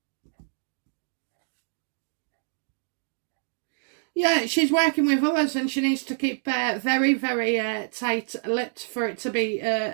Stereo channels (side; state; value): left; silent; digital silence